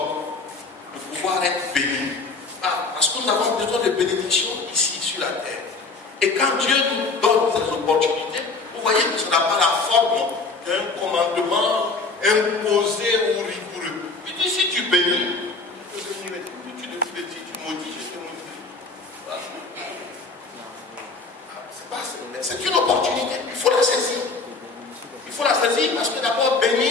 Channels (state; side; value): quieter; right; 3.9 dB